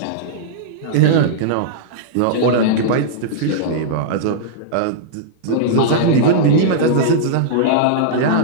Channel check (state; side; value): different; both; correlation -0.03